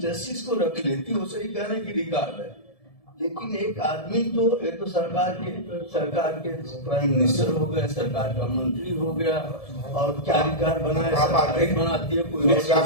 जस्टिस को रख लेती, वो सही कहने की रिकॉर्ड है, लेकिन एक आदमी तो ये तो सरकार के प्राइम मिनिस्टर हो गए, सरकार का मंत्री हो गया, और क्या रिकॉर्ड बनाए, सरकार बनाती है, कोई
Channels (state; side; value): late; right; 1.7 ms